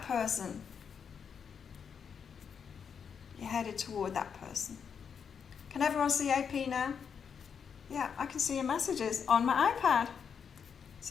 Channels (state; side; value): quieter; right; 6.9 dB